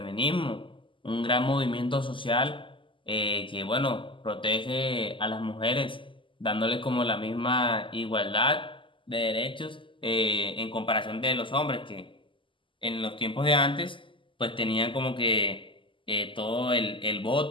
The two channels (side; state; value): right; late; 0.25 ms